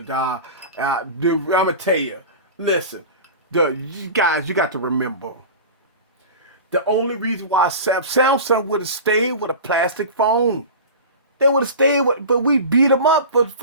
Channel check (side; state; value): both; inverted; correlation -0.32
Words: I'm gonna tell you. Listen, you guys, you got to remember. The only reason why Samsung would have stayed with a plastic phone. They would have stayed with, but we beat them up